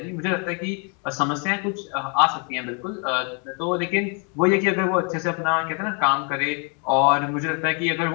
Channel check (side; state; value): right; quieter; 36.8 dB